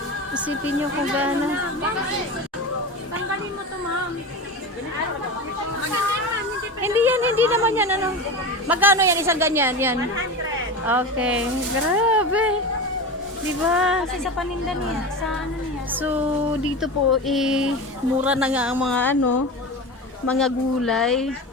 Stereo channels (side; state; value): both; normal; correlation 0.26